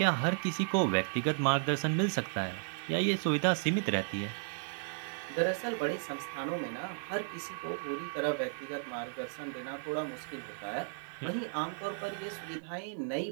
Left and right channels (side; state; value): left; silent; digital silence